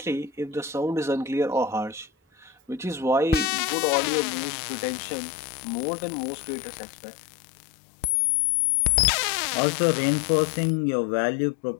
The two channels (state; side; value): drops out; right; at 3.5 s